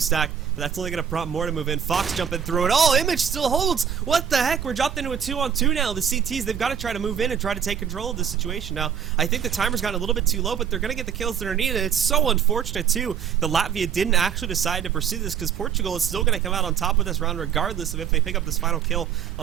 but that's only going to prompt more to move in. Fox jumping through it. Oh, Image still holds. What the heck? We're dropped into a 2-on-2 now. The CTs, they've got to try to move in and try to take control of this situation now. I think the timer's gotten a little bit too low, but they're going to get the kills that are needed. It's so unfortunate, too, that Latvia didn't actually decide to pursue this, because Portugal is still going to come out on top of this round regardless of if they pick up this final kill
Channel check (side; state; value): left; quieter; 8.2 dB